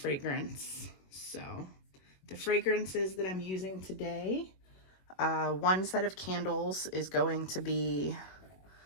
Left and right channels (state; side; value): late; right; 21 ms